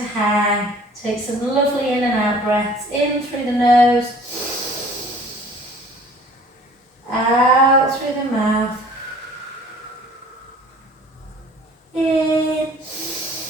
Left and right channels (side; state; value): both; normal; correlation 0.50